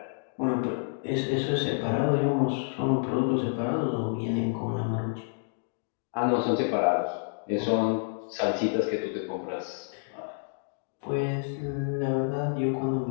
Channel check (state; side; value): silent; right; digital silence